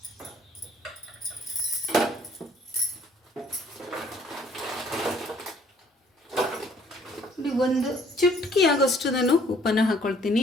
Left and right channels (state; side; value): normal; both; correlation 0.60